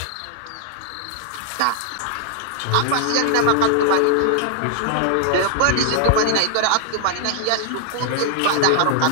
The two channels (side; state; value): both; different; correlation 0.00